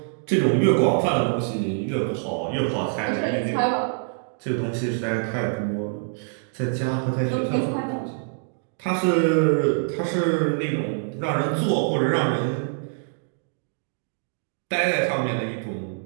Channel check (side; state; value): left; silent; 62 dB below the other